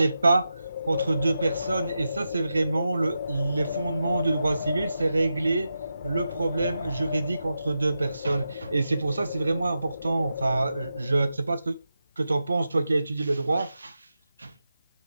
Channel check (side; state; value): both; inverted; correlation -0.89